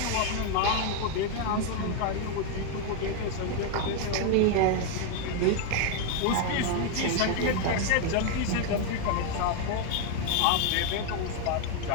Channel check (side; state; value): both; different; correlation 0.01